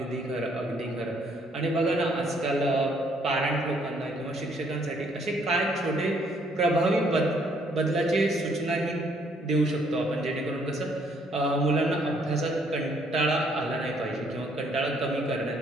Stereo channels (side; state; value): both; normal; correlation 0.67